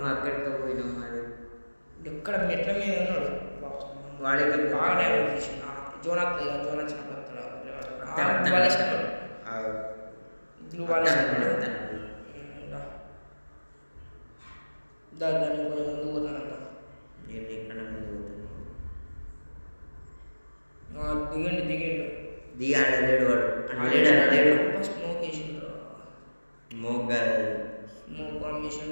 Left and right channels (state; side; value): inverted; both; correlation -1.00